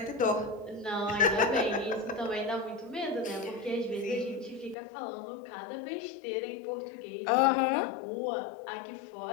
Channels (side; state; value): right; drops out; at 4.8 s